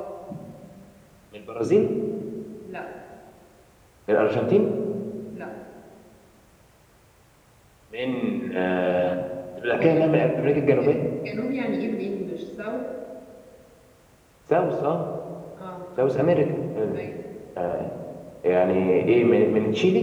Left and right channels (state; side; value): identical; both; correlation 1.00